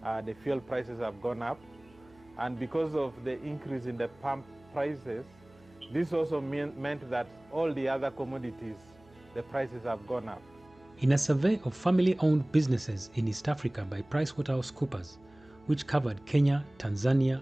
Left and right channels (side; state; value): right; noise; hum, 28 dB below the sound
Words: The fuel prices have gone up, and because of the increase in the pump prices, this also meant that all the other commodities, the prices have gone up. In a survey of family-owned businesses in East Africa by Pricewaterhousecoopers, which covered Kenya, Tanzania,